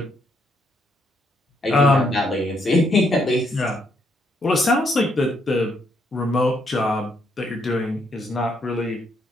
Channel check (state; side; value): normal; both; correlation 0.74